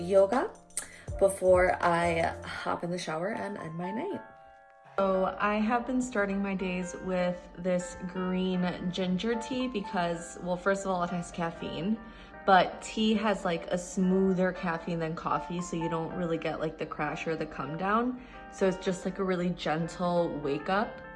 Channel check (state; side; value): identical; both; correlation 1.00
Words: before I hop in the shower and end my night. So I have been starting my days with this green ginger tea because, well, first of all, it has caffeine, but tea has like a smoother caffeine than coffee, so you don't really get like the crash or the come down. So it's just like a really gentle wake up